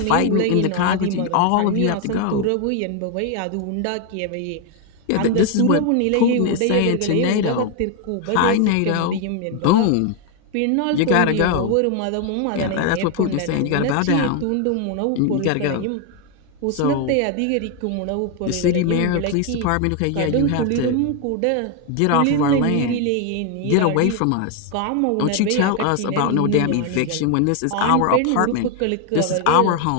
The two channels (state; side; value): different; both; correlation 0.01